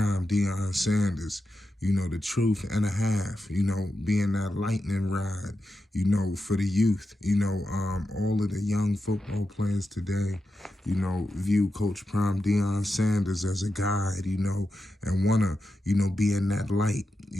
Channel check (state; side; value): normal; both; correlation 0.89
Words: Deion Sanders. You know, the truth and a half, you know, being that lightning rod, you know, for the youth. You know, all of the young football players today, you know, view Coach Prime Deion Sanders as a guide, you know, and want to, you know, be in that light,